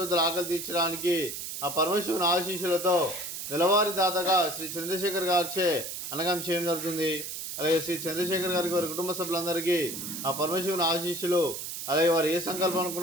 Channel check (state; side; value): noise; right; hiss, 6 dB below the sound